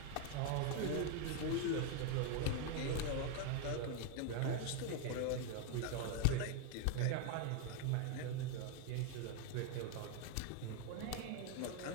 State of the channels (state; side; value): different; both; correlation 0.01